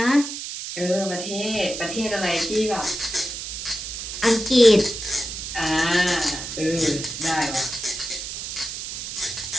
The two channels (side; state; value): right; noise; hiss, 7 dB below the sound